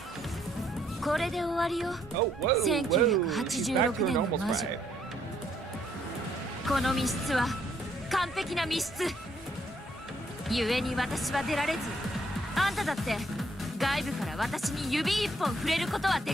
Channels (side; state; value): both; normal; correlation 0.70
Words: これで終わりよ。 Oh, whoa, whoa, she's back to her 1986年の normal 魔女。 sprite. この密室は完璧な密室。故に私は出られず、あんただって外部から私に指一本触れることは